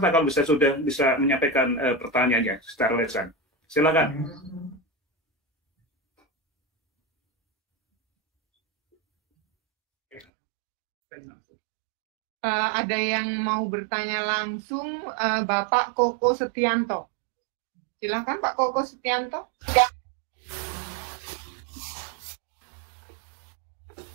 kalau sudah bisa menyampaikan pertanyaannya secara lisan. Silakan. Ada yang mau bertanya langsung, Bapak Koko Setianto. Silakan Pak Koko Setianto.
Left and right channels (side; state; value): left; drops out; at 10.2 s